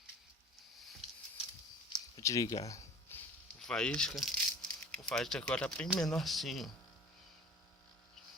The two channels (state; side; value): normal; both; correlation 0.43